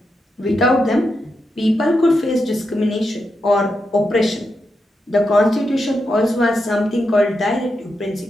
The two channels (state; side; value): normal; both; correlation 0.85